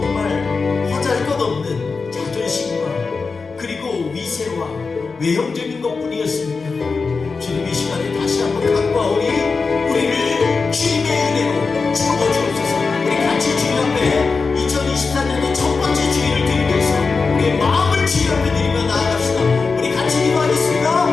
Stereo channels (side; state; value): right; quieter; 4.5 dB